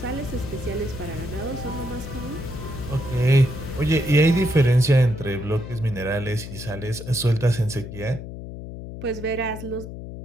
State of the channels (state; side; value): noise; left; hum, 10 dB below the sound